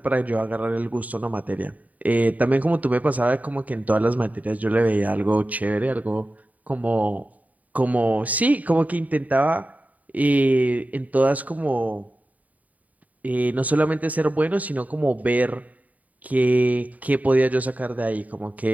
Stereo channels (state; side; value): late; left; 0.073 ms